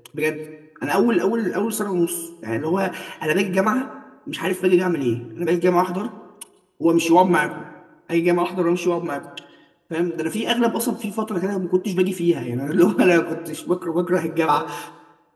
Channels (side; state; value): both; identical; correlation 1.00